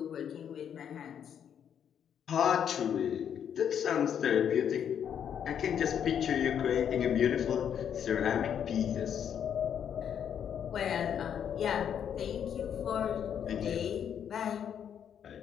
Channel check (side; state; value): right; quieter; 8.6 dB